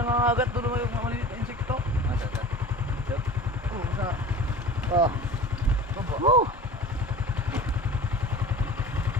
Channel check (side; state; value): both; normal; correlation 0.37